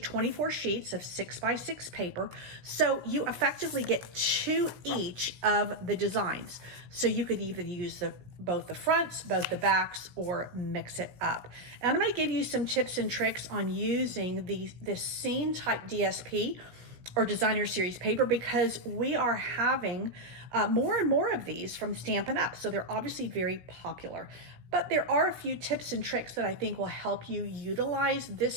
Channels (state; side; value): late; left; 17 ms